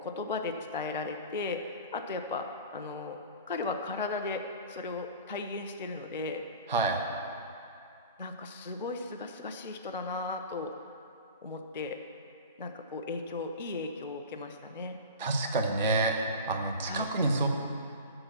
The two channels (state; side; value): inverted; both; correlation -0.34